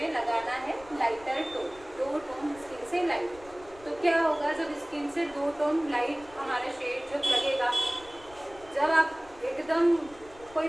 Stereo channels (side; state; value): left; noise; rumble, 23 dB below the sound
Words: लगाना है लाइटर टोन, 2 टोन स्किन से लाइट। तो क्या होगा, जब स्किन से 2 टोन लाइट हमारा शेड जब लगेगा, जब आप एकदम कोई